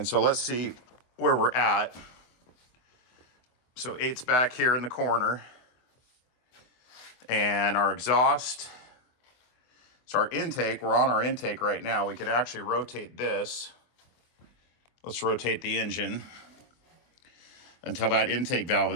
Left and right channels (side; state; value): right; late; 24 ms